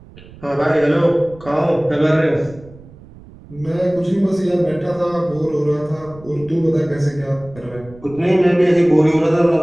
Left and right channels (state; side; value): noise; right; rumble, 21 dB below the sound